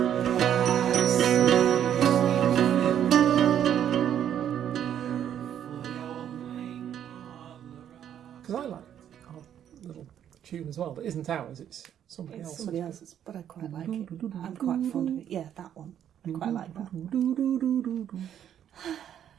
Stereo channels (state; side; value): quieter; left; 9.9 dB